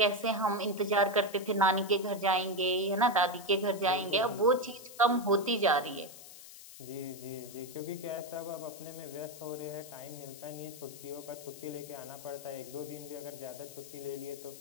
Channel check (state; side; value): noise; left; hiss, 16 dB below the sound